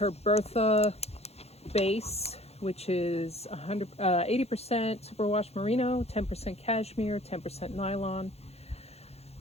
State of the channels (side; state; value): right; late; 0.30 ms